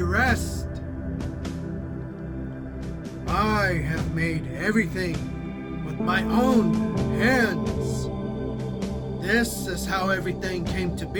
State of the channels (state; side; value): identical; both; correlation 1.00